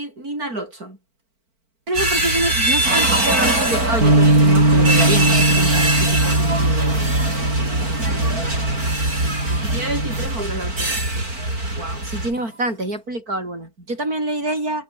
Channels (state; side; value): late; left; 4.5 ms